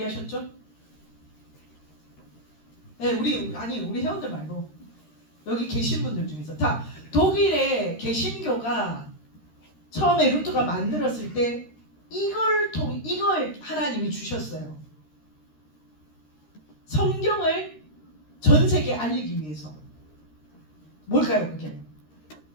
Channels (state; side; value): late; right; 13 ms